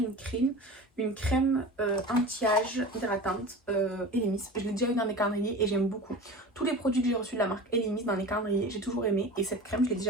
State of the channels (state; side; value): normal; both; correlation 0.34